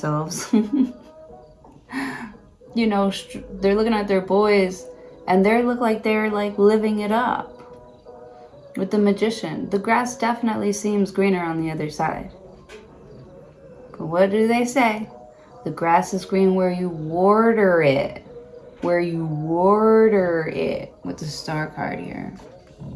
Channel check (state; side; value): identical; both; correlation 1.00